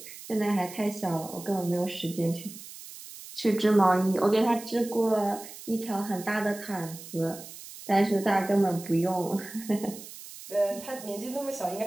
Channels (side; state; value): right; noise; hiss, 15 dB below the sound